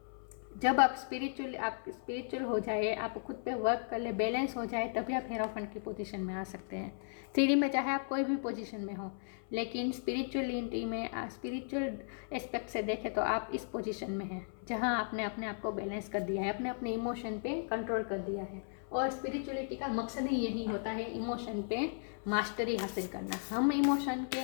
जब आप स्पिरिचुअल हो जाए, आप खुद पे वर्क कर ले, बैलेंस हो जाए, तभी आप हेरोफंट की पोजीशन में आ सकते हैं। 3D में चाहे आप कोई भी पोजीशन में हो, लेकिन स्पिरिचुअलिटी में, स्पिरिचुअल एस्पेक्ट से देखें तो आप इस पोजीशन में हैं जहां आपने अपने आप को बैलेंस कर दिया है, अपने इमोशन पे कंट्रोल कर दिया है। और स्पिरिचुअलिटी का मकसद ही यही होता है, इमोशन पे मास्टरी हासिल करना। हम इमोशन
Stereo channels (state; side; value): silent; right; 54 dB below the other